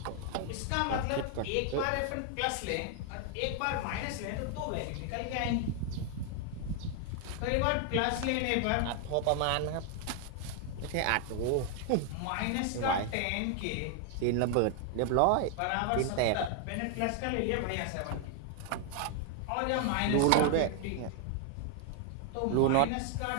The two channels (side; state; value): both; different; correlation 0.00